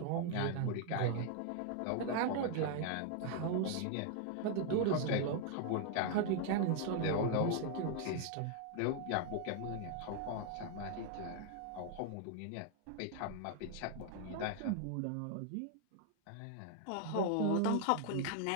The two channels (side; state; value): both; different; correlation 0.00